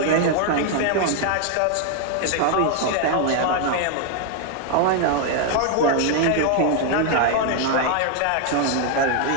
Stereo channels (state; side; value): different; both; correlation 0.00